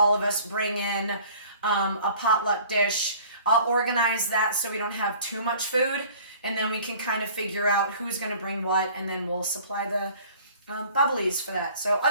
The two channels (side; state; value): both; inverted; correlation -0.50